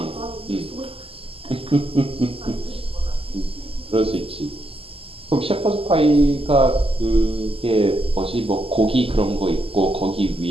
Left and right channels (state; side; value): late; left; 0.27 ms